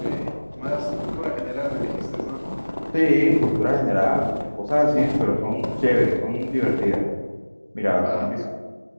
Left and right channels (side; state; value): both; inverted; correlation -1.00